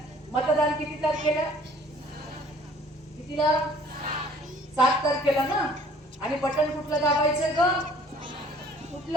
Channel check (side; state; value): both; normal; correlation 0.54